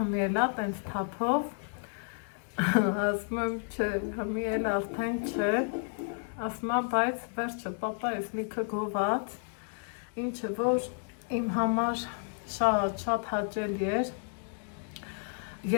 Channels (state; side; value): silent; right; 57 dB below the other